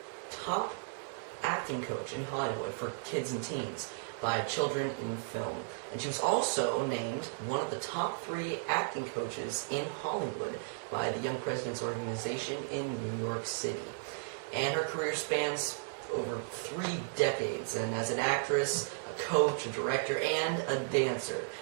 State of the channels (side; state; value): left; silent; digital silence